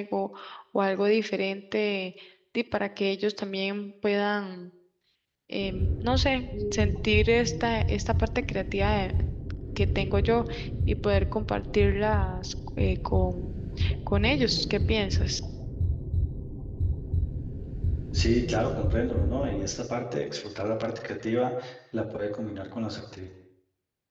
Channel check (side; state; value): both; identical; correlation 1.00